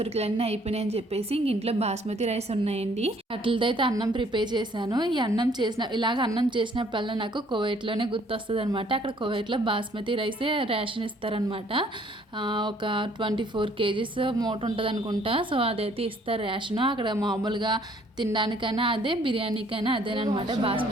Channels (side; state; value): both; normal; correlation 0.61